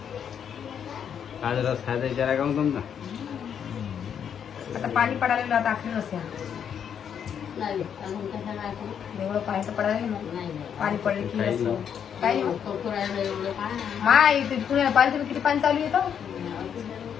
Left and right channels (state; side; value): quieter; right; 8.2 dB